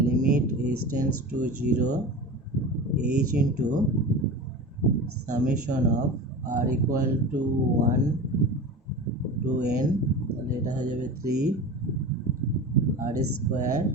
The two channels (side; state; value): both; normal; correlation 0.31